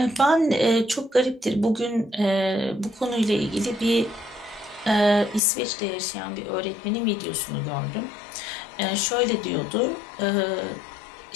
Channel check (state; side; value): drops out; right; at 5.4 s